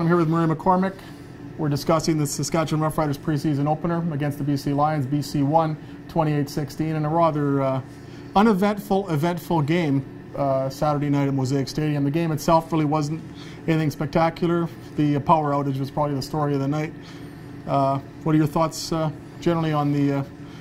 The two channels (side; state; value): both; identical; correlation 1.00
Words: I'm here with Murray McCormick. We're discussing the Saskatchewan Roughriders preseason opener against the BC Lions. BC won 28-16 in a rather eventful game Saturday night at Mosaic Stadium. The game itself really wasn't anything spectacular. The power outage was probably the story of the night. What are your thoughts generally on the